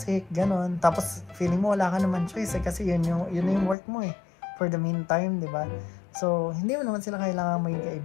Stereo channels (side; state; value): right; drops out; at 3.8 s